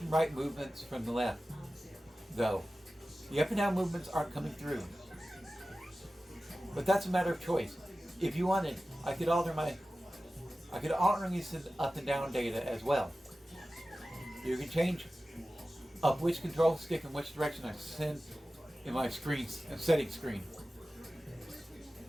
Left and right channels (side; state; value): both; normal; correlation 0.95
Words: and right movements from the left, though. The up and down movements aren't coming through. But that's a matter of choice. If you wanted, I could alternately send up and down data as well. You can change up which control stick in which direction I send in my settings screen.